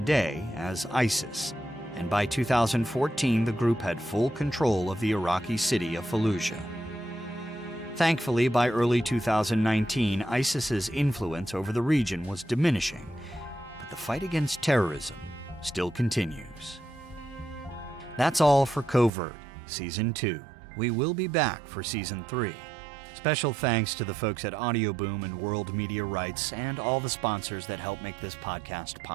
as ISIS. And by 2014, the group had full control of the Iraqi city of Fallujah. Thankfully, by early 2019, ISIS's influence over the region was diminishing, but the fight against terrorism still continues. That's all for Covert, Season 2. We will be back for Season 3. Special thanks to the folks at Audioboom and World Media Rights and all the sponsors that help make this podcast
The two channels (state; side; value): drops out; left; at 19.1 s